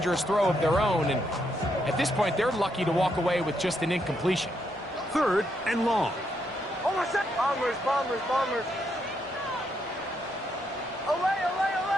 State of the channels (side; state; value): both; normal; correlation 0.78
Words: throw of their own. And at this point, they're lucky to walk away with just an incompletion. 3rd and long. Bombers. Away.